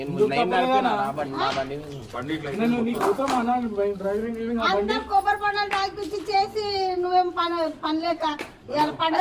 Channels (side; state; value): both; identical; correlation 1.00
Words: కొబ్బరి పండుగ తాగిపించి చేసి నువ్వేం పనిలేక